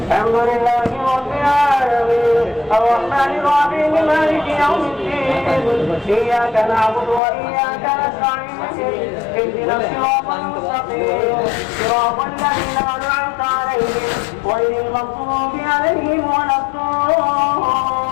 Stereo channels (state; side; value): drops out; right; at 7.2 s